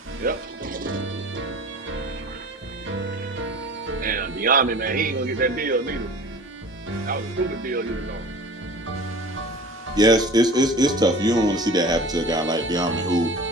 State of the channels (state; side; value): normal; both; correlation 0.40